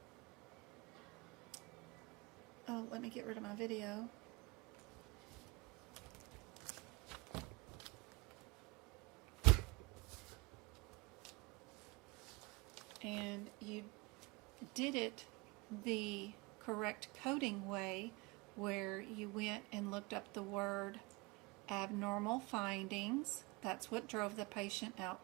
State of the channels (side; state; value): left; quieter; 24.4 dB